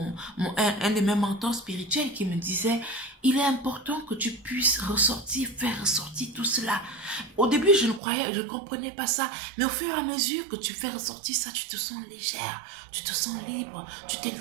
de mes mentors spirituels qui me disait, il est important que tu puisses ressortir, faire ressortir tout cela. Au début, je ne comprenais pas ça. Mais au fur et à mesure que tu fais ressortir ça, tu te sens légère, tu te sens libre, tu te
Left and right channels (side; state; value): left; drops out; at 8.0 s